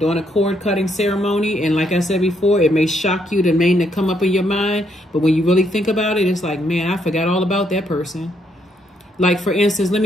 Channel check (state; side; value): normal; both; correlation 0.74